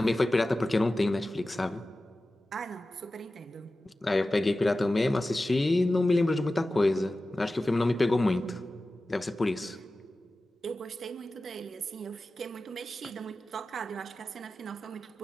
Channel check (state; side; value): normal; both; correlation 0.95